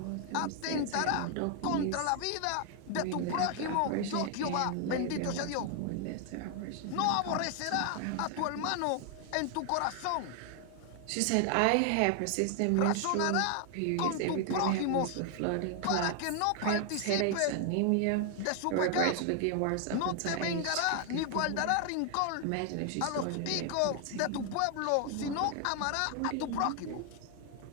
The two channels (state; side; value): different; both; correlation 0.00